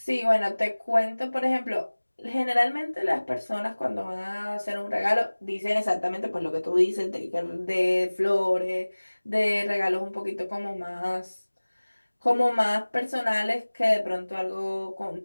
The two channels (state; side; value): inverted; both; correlation -1.00